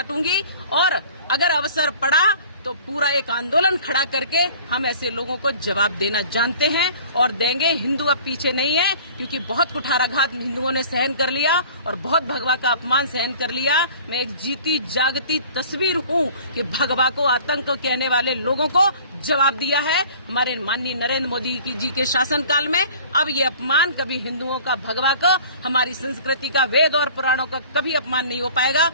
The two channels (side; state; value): both; inverted; correlation -0.47